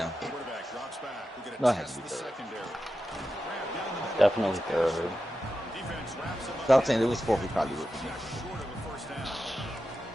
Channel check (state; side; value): normal; both; correlation 0.90